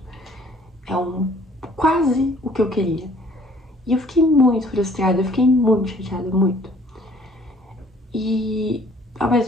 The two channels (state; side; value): normal; both; correlation 0.57